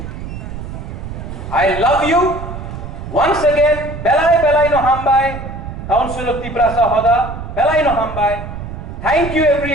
I love you once again, बेलाई बेलाई नो हमबाई, काउंसिल ऑफ तिपरासा होदा, बेलाई नो हमबाई। थैंक यू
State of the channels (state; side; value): noise; right; rumble, 9 dB below the sound